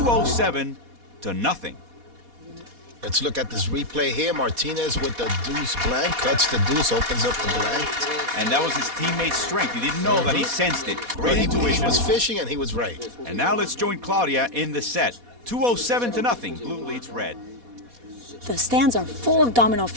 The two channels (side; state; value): left; late; 4.2 ms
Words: to nothing. Let's look at this replay here. Martinez with the deuce blank. Cuts the deuce, opens up the blank. And that was his teammate's strength. He didn't know that he sensed it. Great intuition. He was fishing and he was right. And now let's join Claudia in the set. 207 to nothing. Blue leads red. The stands are full of domino